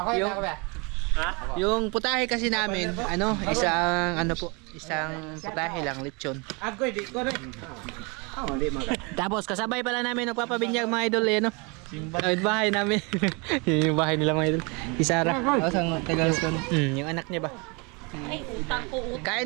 Yung- Yung putahe kasi namin, isang putahe lang, lechon. Ako di ko rin. Di mga. Tapos kasabay pala namin nagpapabinyag mga idol eh, no? Yung bahay namin. Yung bahay nila mga idol. Isara. Sang Tagalas ko. Yung anak niya ba? Ay, utang ko.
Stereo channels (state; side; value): quieter; left; 30.0 dB